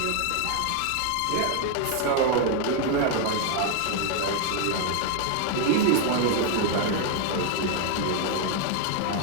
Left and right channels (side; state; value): both; different; correlation 0.01